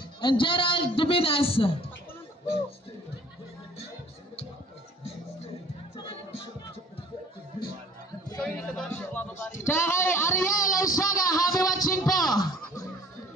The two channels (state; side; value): normal; both; correlation 0.52